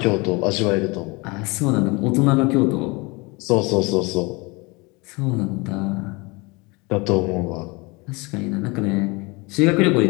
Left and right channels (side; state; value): right; quieter; 26.3 dB